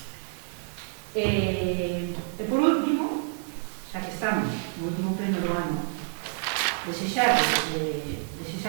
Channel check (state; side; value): silent; left; 59 dB below the other